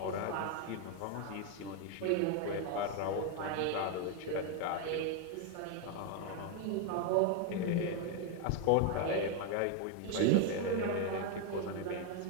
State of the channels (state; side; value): different; both; correlation 0.01